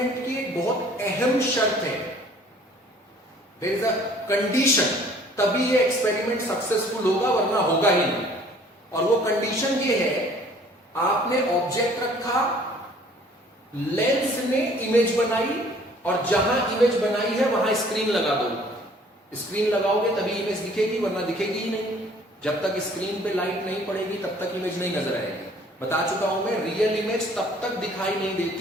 की एक बहुत अहम शर्त है, देयर इज अ कंडीशन, तभी ये एक्सपेरिमेंट सक्सेसफुल होगा वरना होगा ही नहीं। और वो कंडीशन ये है, आपने ऑब्जेक्ट रखा, लेंस ने इमेज बनाई और जहां इमेज बनाई है वहां स्क्रीन लगा दो। स्क्रीन लगाओगे तभी इमेज दिखेगी वरना दिखेगी ही नहीं। जब तक स्क्रीन पे लाइट नहीं पड़ेगी तब तक इमेज नहीं नजर आएगी। बता चुका हूं मैं, रियल इमेज तब तक दिखाई नहीं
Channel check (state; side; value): normal; both; correlation 0.55